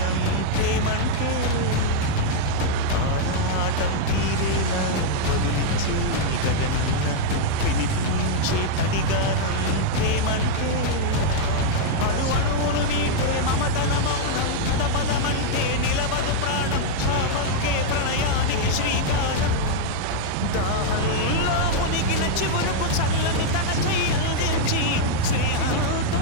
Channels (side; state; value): both; different; correlation -0.01